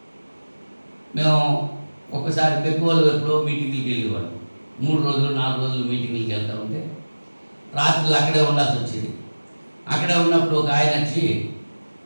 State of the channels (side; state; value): both; inverted; correlation -1.00